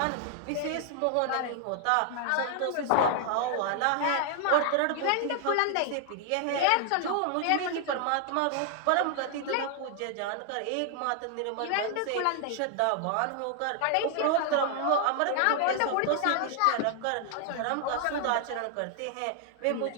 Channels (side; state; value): both; different; correlation 0.00